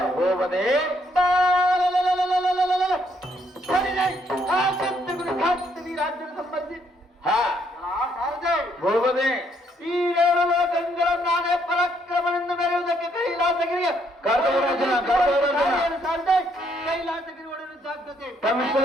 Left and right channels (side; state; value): both; normal; correlation 0.71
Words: ಹೋಗದೆ ರಾಜ್ಯದ ಸಂಬಂಧಿ ಹೋಗದೆ ಈ 7 ಲೋಕಗಳ ನಾನೇ ಪರಾಕ್ರಮದಿಂದ ಮೆರೆಯುವುದಕ್ಕೆ ಕೈಲಾಸಗಿರಿಗೆ ಕೈಲಾಸಗಿರಿ ಒಡೆದು ಸಾಧ್ಯತೆ